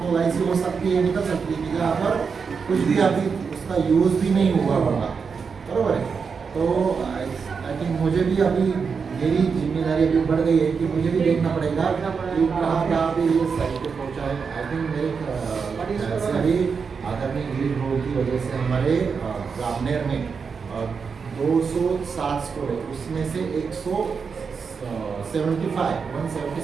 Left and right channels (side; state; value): left; quieter; 5.6 dB